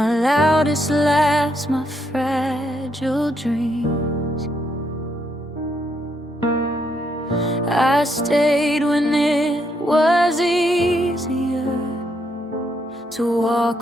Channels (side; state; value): both; normal; correlation 0.76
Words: loudest laughs, my fragile dreams. I stayed when it was easier to